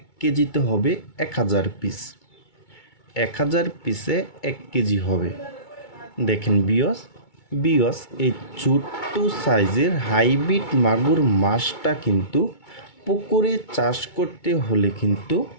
কেজিতে হবে 1000 পিস। 1000 পিসে 1 কেজি হবে। দেখেন বিয়স এই ছোট্ট সাইজের হাইব্রিড মাগুর মাছটা কিন্তু পুকুরে চাষ করতে হলে কিন্তু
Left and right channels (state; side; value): late; right; 2.2 ms